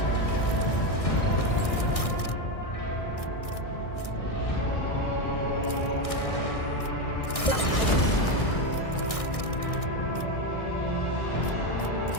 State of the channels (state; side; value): late; right; 1.6 ms